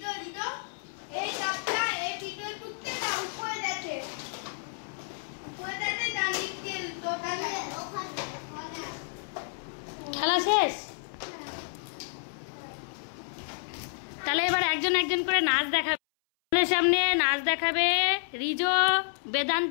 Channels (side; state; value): right; silent; 58 dB below the other